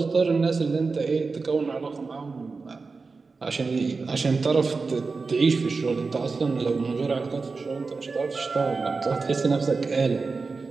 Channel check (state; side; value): quieter; left; 4.3 dB